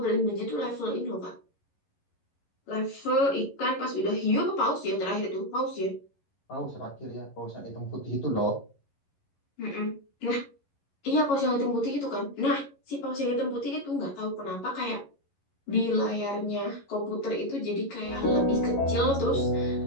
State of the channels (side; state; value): right; late; 11 ms